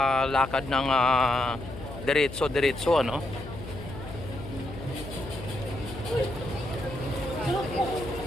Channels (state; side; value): noise; left; hum, 11 dB below the sound